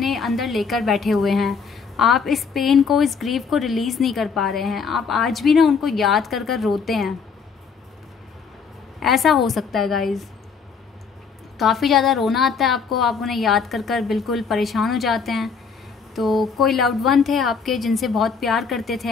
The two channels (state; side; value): quieter; right; 5.7 dB